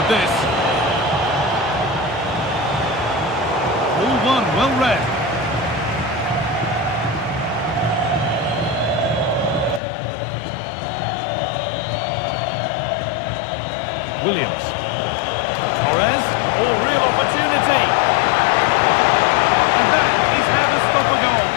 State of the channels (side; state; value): right; drops out; at 9.8 s